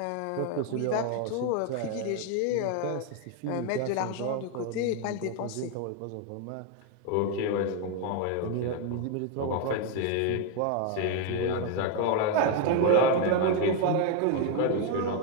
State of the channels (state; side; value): different; both; correlation 0.01